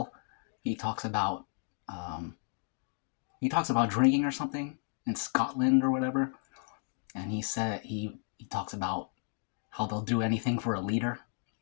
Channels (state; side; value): silent; right; 56 dB below the other